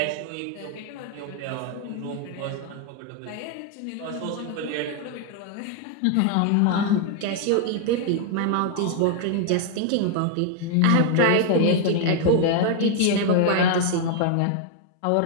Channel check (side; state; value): both; different; correlation 0.00